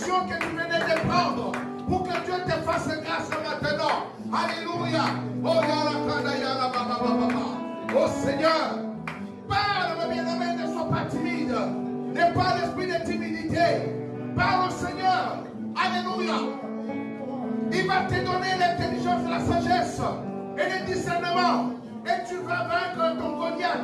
que tu venais de prendre, pour que Dieu te fasse grâce maintenant. Alléluia. Oh, oh Seigneur, parle, mon bien-aimé, ne sois pas timide. N'aie pas l'esprit de timidité. Parle au Seigneur. Alléluia. Il va te donner l'intelligence, la sagesse et le discernement. Et tu vas vaincre ton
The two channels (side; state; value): both; identical; correlation 1.00